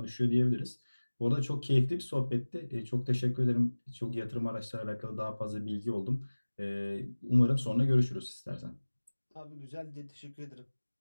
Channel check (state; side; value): inverted; both; correlation -1.00